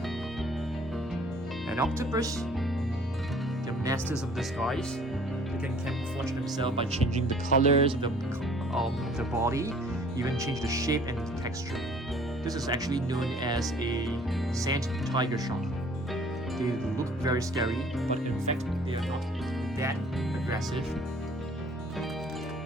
An octopus. They're masters of disguise. They can camouflage themselves by changing the colors of the body, even change the shape and the texture. This is actually known as a sand tiger shark. They look very scary, but in fact they are not that aggressive.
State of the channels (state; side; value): normal; both; correlation 0.54